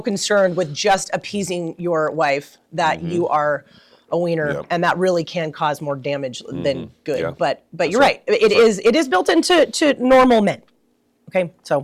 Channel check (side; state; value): both; identical; correlation 1.00